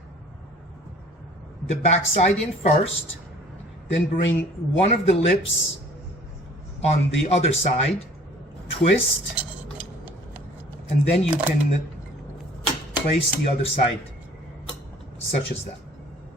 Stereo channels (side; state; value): both; normal; correlation 0.52